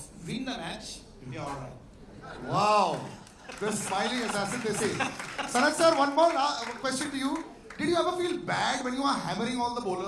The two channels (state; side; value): identical; both; correlation 1.00